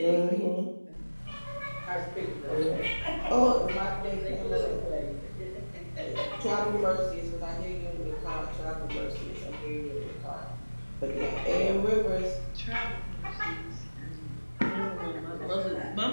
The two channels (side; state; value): both; inverted; correlation -1.00